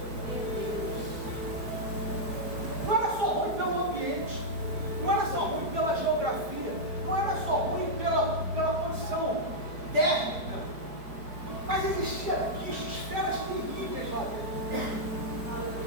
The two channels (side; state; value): left; late; 4.9 ms